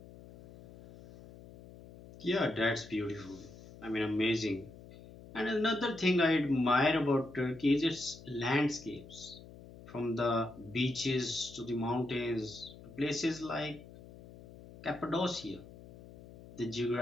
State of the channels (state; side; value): noise; left; hum, 18 dB below the sound